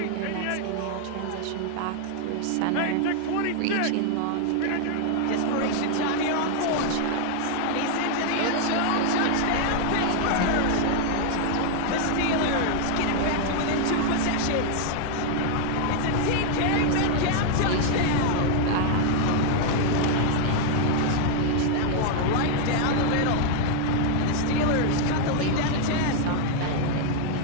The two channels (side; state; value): both; different; correlation 0.00